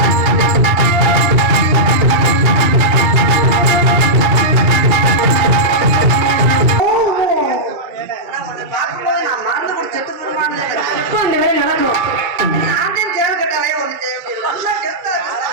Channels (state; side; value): late; left; 2.3 ms